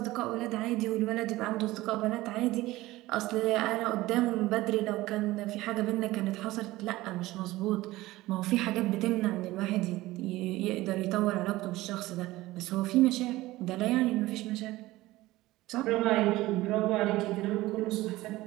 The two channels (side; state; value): left; quieter; 18.0 dB